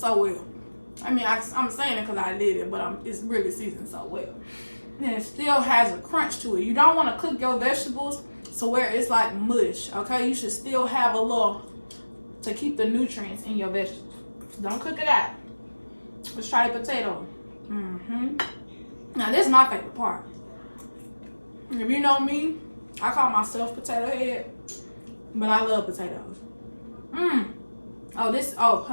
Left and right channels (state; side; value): inverted; both; correlation -1.00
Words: well. I mean, I'm saying it because I did it, but it's really seasoned so well. And it still has a crunch to it. You don't want to cook your vegetables so where it's like mush, okay? You should still have a little to keep the nutrients in your vegetables. Don't cook it out. Let's try the potato. Now, this is my favorite part. If you know me, I call myself potato head, but I love potatoes. Oh,